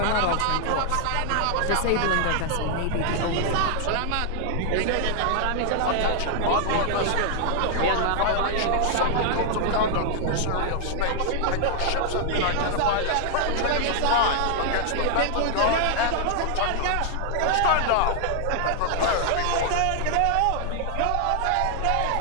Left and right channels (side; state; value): both; different; correlation 0.00